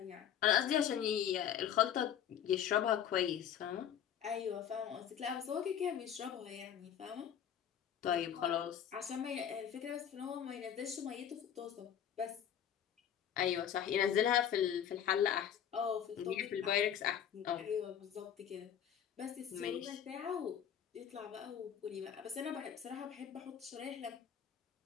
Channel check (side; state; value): right; quieter; 9.3 dB